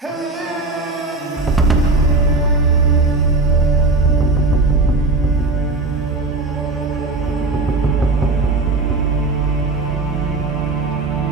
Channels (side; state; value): left; quieter; 3.3 dB